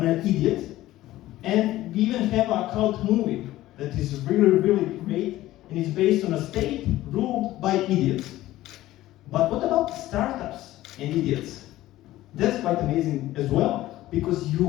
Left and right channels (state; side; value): quieter; right; 15.6 dB